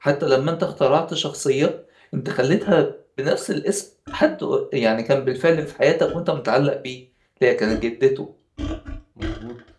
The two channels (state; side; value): identical; both; correlation 1.00